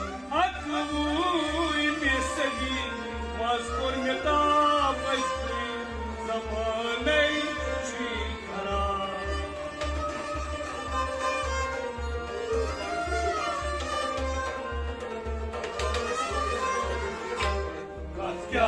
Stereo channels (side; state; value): both; identical; correlation 1.00